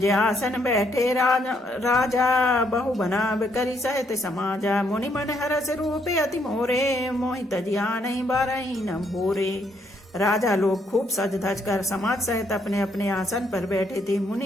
आसन बैठे राजा बहु बना करी सहित समाजा। मुनि मन हरस रूपे अति मोरे, मोहि तजिया नहीं बारही न भोरे। राजा लोग खूब सज धज कर समाज सहित अपने अपने आसन पर बैठे थे।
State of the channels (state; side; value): normal; both; correlation 0.72